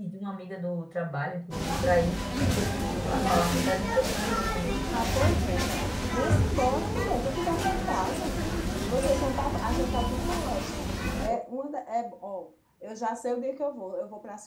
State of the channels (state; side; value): identical; both; correlation 1.00